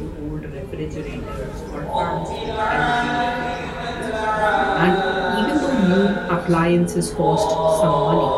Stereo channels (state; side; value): identical; both; correlation 1.00